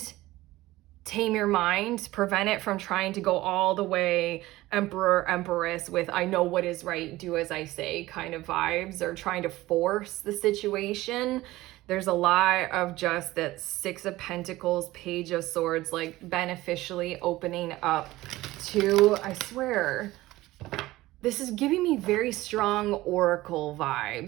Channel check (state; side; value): quieter; left; 17.8 dB